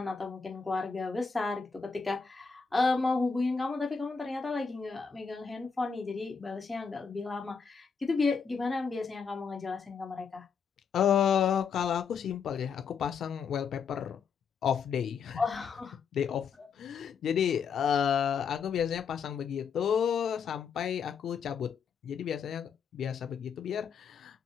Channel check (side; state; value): right; quieter; 6.0 dB